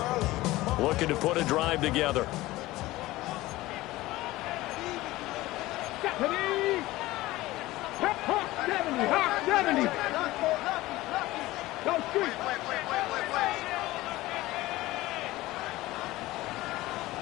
Looking to put a drive together. Hawk 70, Hawk 70. Go street.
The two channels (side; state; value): right; quieter; 18.0 dB